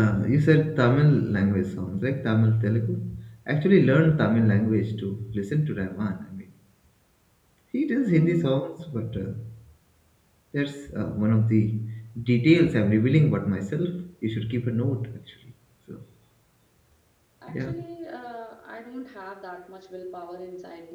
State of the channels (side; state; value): both; identical; correlation 1.00